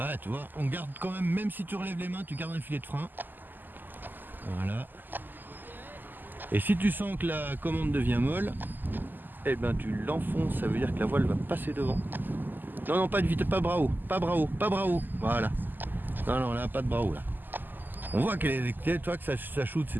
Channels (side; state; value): left; late; 0.089 ms